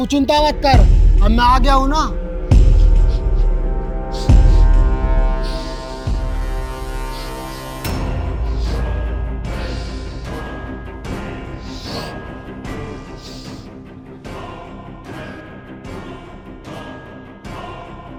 चिंता मत कर, अब मैं आ गया हूँ ना।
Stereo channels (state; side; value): identical; both; correlation 1.00